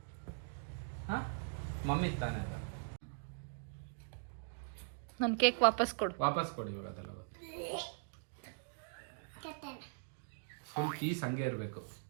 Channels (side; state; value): left; silent; digital silence